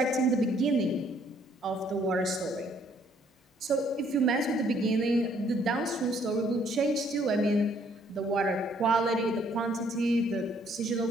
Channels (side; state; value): both; normal; correlation 0.65